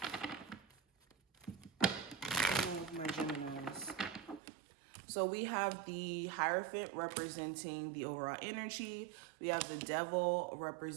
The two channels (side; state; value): left; drops out; at 4.4 s